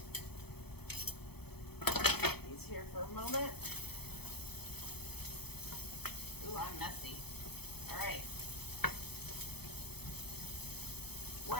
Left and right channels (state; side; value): late; right; 0.97 ms